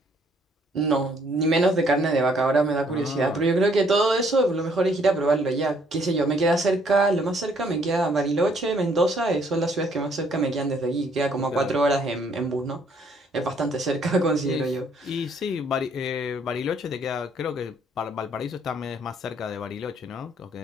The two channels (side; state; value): both; normal; correlation 0.66